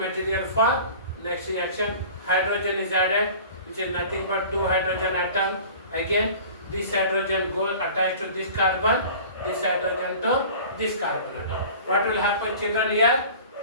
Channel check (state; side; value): inverted; both; correlation -0.42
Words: for next reaction. hydrogen is added, which is nothing but two hydrogen atom. Again, this hydrogen goes attached to this carbon, this hydrogen to this carbon atom. What will happen, children, here?